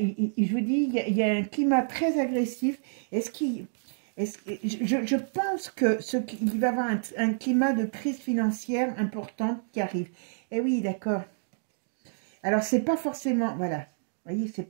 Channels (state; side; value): silent; left; digital silence